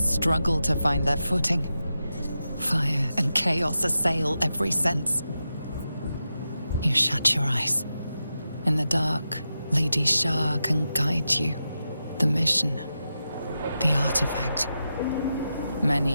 to find their footing. Fire and chaos assail every sense. You shut your eyes. In the dark, Lady Shah can guide you. The mission, the artifact.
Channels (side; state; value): both; inverted; correlation -0.89